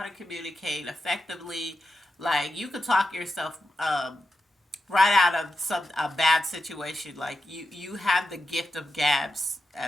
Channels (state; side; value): normal; both; correlation 0.89